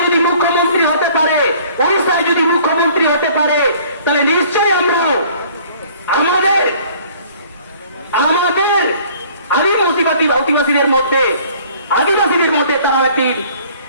যদি মুখ্যমন্ত্রী হতে পারে ওড়িশায় যদি মুখ্যমন্ত্রী হতে পারে তাহলে নিশ্চয়ই আমরা আমাদের আদিবাসীদের মধ্যে তারা একটি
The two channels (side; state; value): both; inverted; correlation -0.54